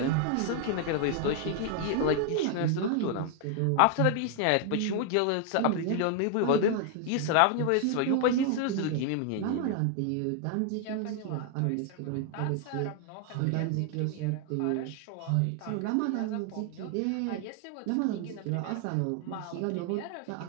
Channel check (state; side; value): different; both; correlation 0.00